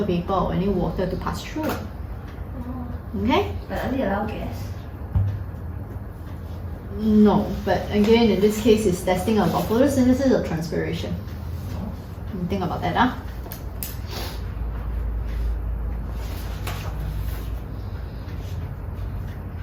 vapor or any water to pass through. Okay? But only allow gas. No, but again, in this case, it's testing about photosynthesis or transpiration. Think about that,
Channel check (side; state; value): both; identical; correlation 1.00